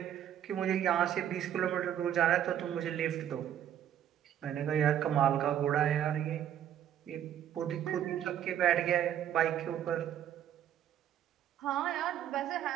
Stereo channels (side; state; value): left; quieter; 10.4 dB